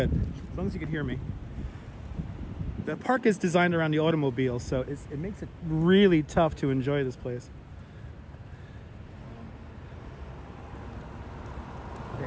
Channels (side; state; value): both; identical; correlation 1.00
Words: As long as you can hear me. The park is designed around the automobile, so it makes it really tough to enjoy this place.